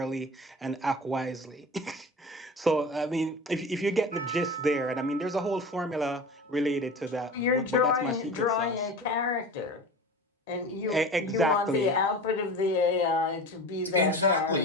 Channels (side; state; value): both; normal; correlation 0.34